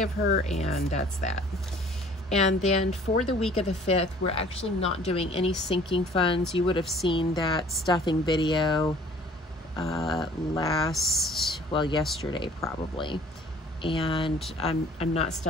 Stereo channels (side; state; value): both; normal; correlation 0.53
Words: her, and that's that. And then for the week of the 5th, we're actually not doing any sinking funds. You would have seen that stuffing video yesterday probably. And I'm not